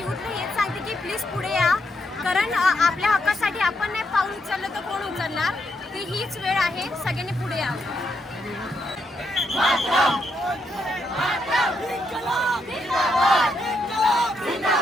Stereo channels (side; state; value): both; normal; correlation 0.79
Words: हेच सांगते की प्लीज पुढे या, कारण आपल्या हक्कासाठी आपण नाही पाऊल उचललं तर कोण उचलणार. ती हीच वेळ आहे, सगळ्यांनी पुढे या.